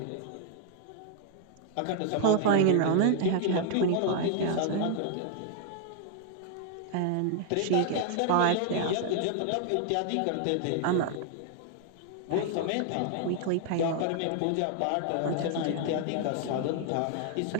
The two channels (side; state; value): both; different; correlation 0.00